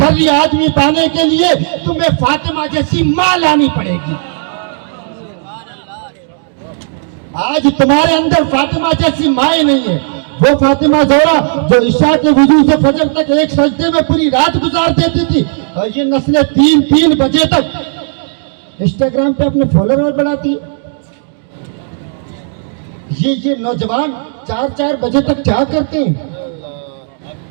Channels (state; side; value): silent; left; digital silence